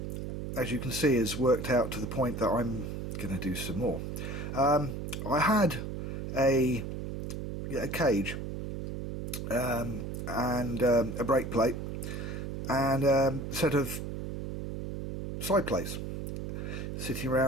as you can see, has worked out to the point that I'm going to do some more. I had a cage and a brake plate and a set of side plates sitting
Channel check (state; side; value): noise; right; hum, 5 dB below the sound